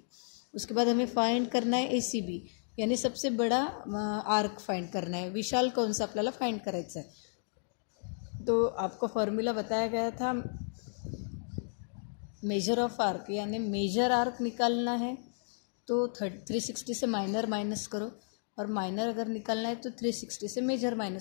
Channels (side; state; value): right; silent; digital silence